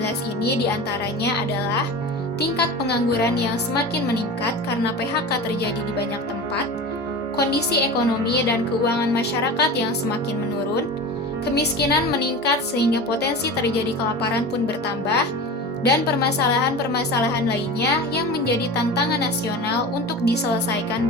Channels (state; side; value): normal; both; correlation 0.31